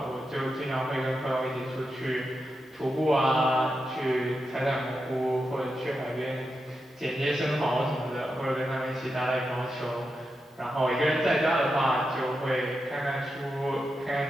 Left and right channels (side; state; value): both; normal; correlation 0.88